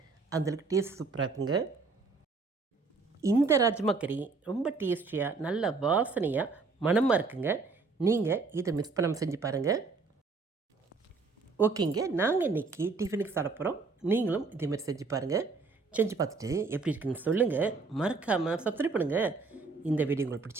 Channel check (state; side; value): quieter; left; 4.2 dB